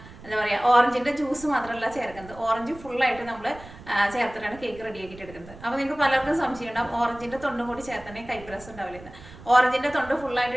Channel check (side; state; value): right; noise; rumble, 18 dB below the sound